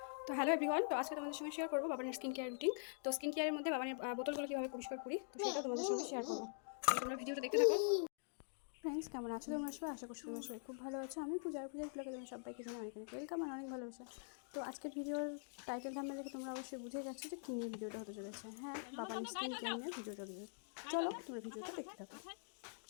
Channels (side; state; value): right; silent; digital silence